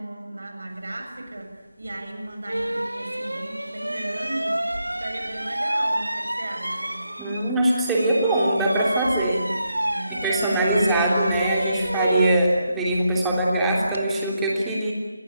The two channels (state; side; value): inverted; both; correlation -0.80